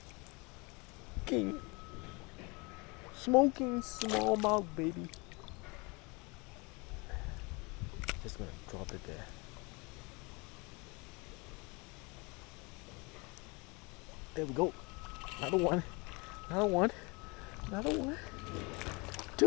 King. Smoking smallmouth, baby. Just gonna drop it there. There we go. Another one. Another one. Another one.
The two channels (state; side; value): quieter; right; 28.1 dB